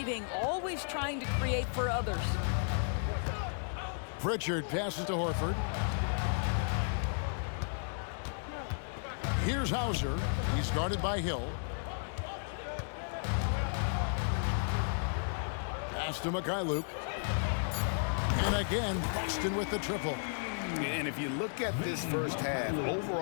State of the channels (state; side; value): silent; right; digital silence